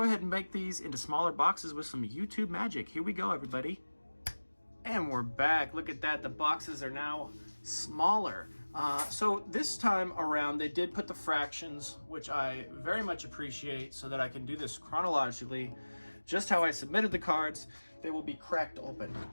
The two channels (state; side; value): inverted; both; correlation -1.00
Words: ahead and make these into smaller boxes with some YouTube magic. Here we go, everybody. And we're back. Look at that. The boxes are now smaller. So this time around, they did put the fractions, which I very much appreciate, so that I can do this chronologically. Just how I submitted the cards, they will be cracked open.